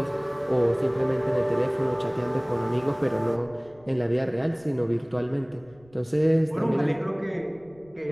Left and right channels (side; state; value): left; noise; rumble, 27 dB below the sound